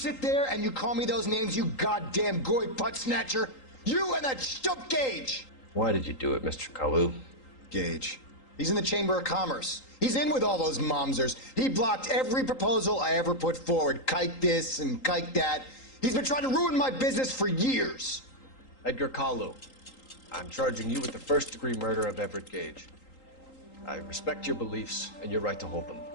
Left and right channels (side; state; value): right; late; 3.8 ms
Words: there and you call me those names, you goddamn goy butt snatcher? You and that stup Gage! Why did you do it, Mr. Kalu? Gage. He's in the Chamber of Commerce. He's in with all those momsers. He blocked every proposal I ever put forward. Kike this and kike that. He's been trying to ruin my business for years. Edgar Kalu, I'm charging you with the first-degree murder of Everett Gage. I respect your beliefs and your right to hold them.